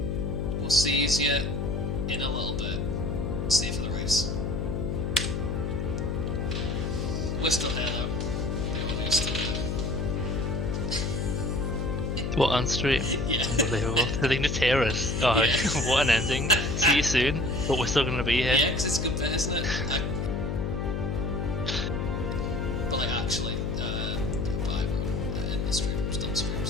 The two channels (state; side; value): noise; left; hum, 1 dB below the sound